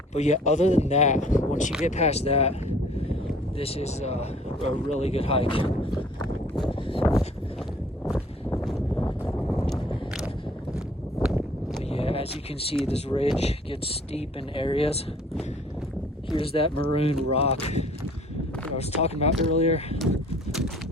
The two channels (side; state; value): both; normal; correlation 0.54